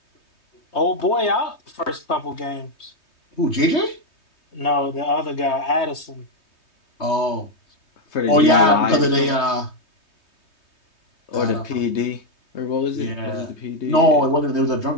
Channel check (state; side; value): late; right; 3.2 ms